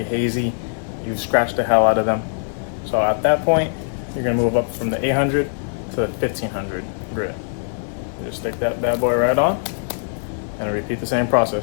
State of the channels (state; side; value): silent; right; 65 dB below the other